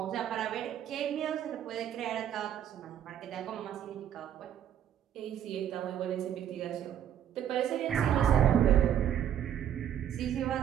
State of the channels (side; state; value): left; quieter; 10.1 dB